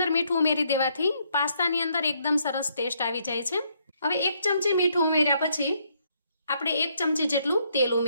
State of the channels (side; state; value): both; inverted; correlation -0.72